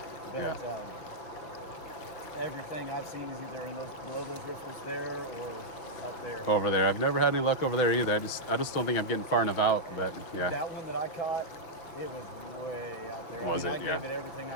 But everything I've seen is either below those riffles there or up there. Over there. I've never had any luck over there either. I just don't think I'm getting far enough out, but yeah. That one that I caught, it was way out there. I gave it everything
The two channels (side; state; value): right; late; 6.3 ms